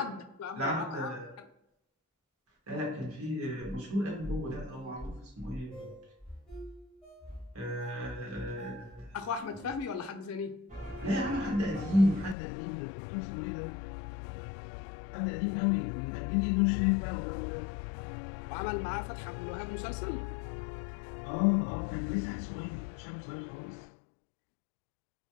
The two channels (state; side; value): drops out; right; at 12.4 s